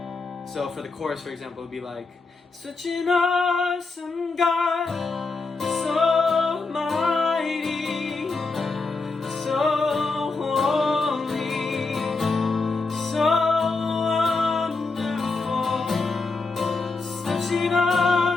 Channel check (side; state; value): right; quieter; 3.9 dB